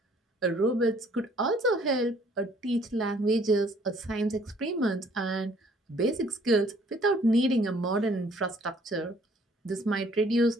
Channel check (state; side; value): normal; both; correlation 0.60